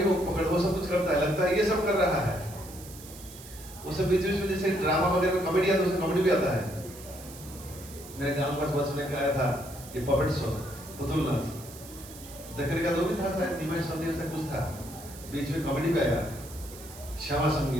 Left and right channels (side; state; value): right; noise; hiss, 16 dB below the sound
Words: वो पकड़, वो सब कुछ करता है, लगता है ये सब कर रहा है। वो सब बीच बीच में जैसे ड्रामा वगैरह में कॉमेडी आता है, उसमें कॉमेडी भी आता है। मेरे गांव के पास बस में आया था ये पपेट शो पुतुल नाच देखने का, तो भी था शायद निमाय संदेश से कुछ था, बीच में कॉमेडी पे आया श्यामा